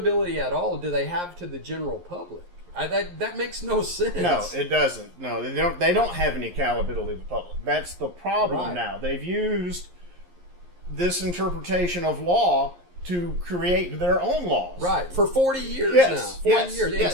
at all do they have to the general public? That makes no sense. No, it doesn't. No, they don't have any accountability to the public. That's the problem Right. now. They've used this interpretation of law to create their own laws. Right, for 40 years Yes, now. 40 yes, years, yes.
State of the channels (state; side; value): late; left; 11 ms